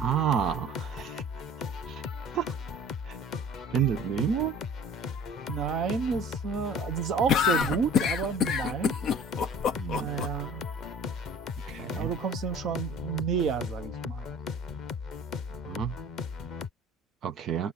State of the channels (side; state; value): both; normal; correlation 0.46